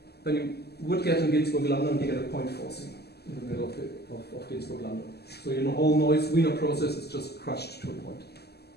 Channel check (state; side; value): late; right; 0.47 ms